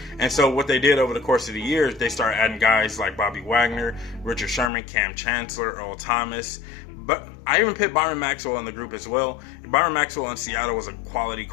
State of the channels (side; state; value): right; drops out; at 4.7 s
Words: And so what they did over the course of the years, they started adding guys like Bobby Wagner, Richard Sherman, Cam Chancellor, Earl Thomas. But I even put Byron Maxwell in the group as well. Byron Maxwell in Seattle was a quality